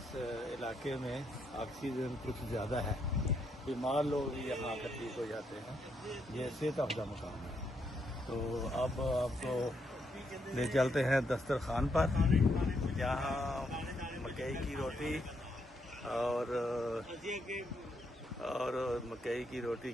इलाके में ऑक्सीजन कुछ ज़्यादा है। बीमार लोग भी यहाँ आकर ठीक हो जाते हैं। ये सेहत अफजा मकाम है। तो अब आपको ले चलते हैं दस्तरखान पर, जहाँ मकई की रोटी और मकई की रोटी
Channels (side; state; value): both; normal; correlation 0.77